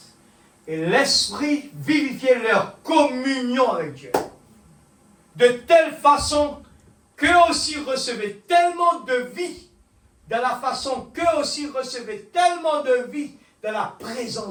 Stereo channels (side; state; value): both; identical; correlation 1.00